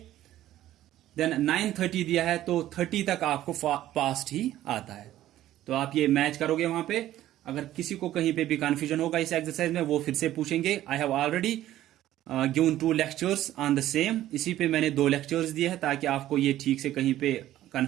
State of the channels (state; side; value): quieter; left; 13.6 dB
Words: देन 9:30 दिया है तो 30 तक आपको पास्ट ही आता है। तो आप ये मैच करोगे वहां पे। अगर किसी को कहीं पे भी कंफ्यूजन होगा इस एक्सरसाइज में वो फिर से पूछेंगे। I have already given 2 lectures on the same. इसी पे मैंने 2 लेक्चर्स दिए हैं ताकि आपको ये ठीक से कहीं पे